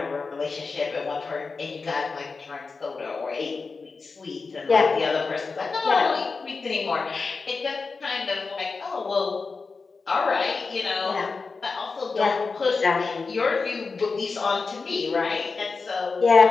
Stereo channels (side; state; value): right; quieter; 4.4 dB